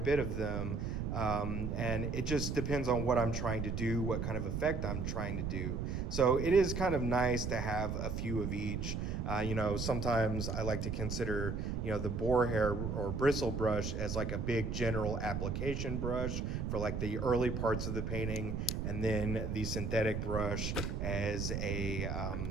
of them, and it just depends on what I'm trying to do, what kind of effect I'm trying to do. So it is kind of nice to have a few of each. You know, sometimes I like to consider, you know, the boar hair or bristle brush as like a big general application brush for like the early parts of the painting, and then the synthetic brush as a,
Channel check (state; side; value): noise; right; rumble, 2 dB below the sound